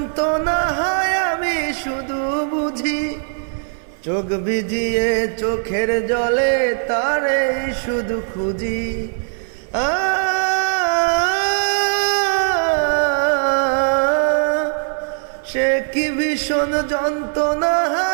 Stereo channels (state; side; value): silent; left; 57 dB below the other